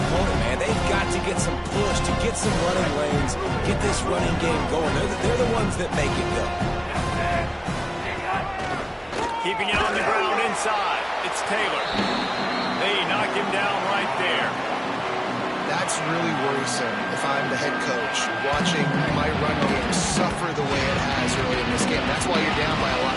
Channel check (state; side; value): identical; both; correlation 1.00